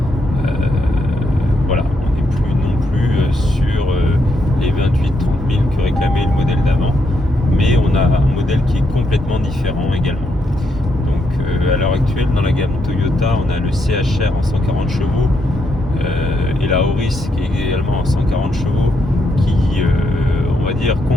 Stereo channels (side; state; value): both; normal; correlation 0.79